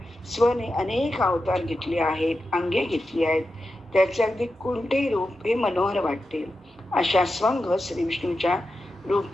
स्वने अनेक अवतार घेतले आहेत, अंगे घेतली आहेत. त्याचे अगदी कोणतेही रूप हे मनोहर वाटते. अशा स्वंग श्री विष्णूच्या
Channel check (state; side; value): normal; both; correlation 0.90